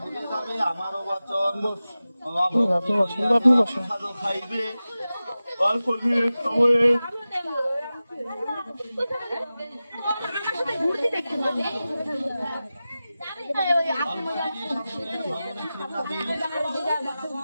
দিলে যাবে আমারও বচন। প্রসাদ খাইবে অল্প দিনের সময়ে,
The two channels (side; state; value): both; inverted; correlation -0.95